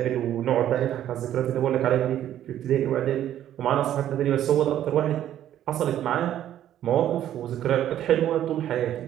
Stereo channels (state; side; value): quieter; left; 11.5 dB